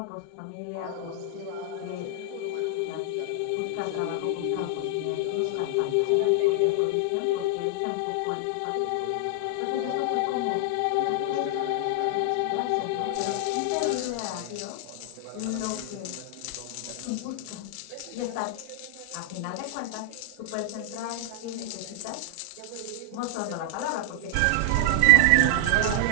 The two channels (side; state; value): both; different; correlation 0.00